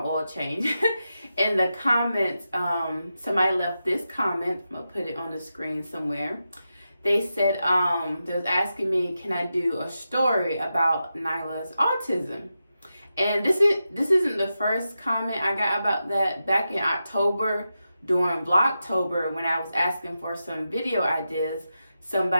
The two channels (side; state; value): both; inverted; correlation -0.89